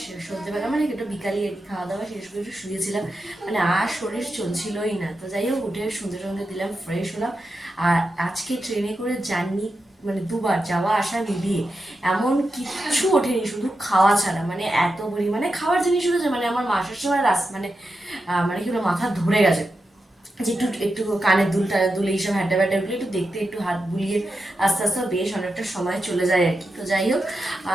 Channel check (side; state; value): both; normal; correlation 0.89